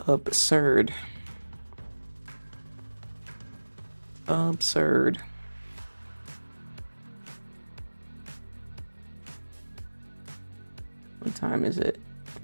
absurd. Absurd. What time is it?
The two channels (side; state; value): both; inverted; correlation -1.00